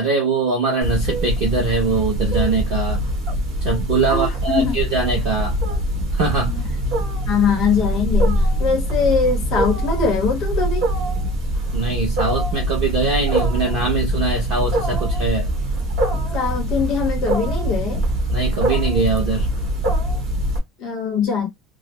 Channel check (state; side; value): normal; both; correlation 0.36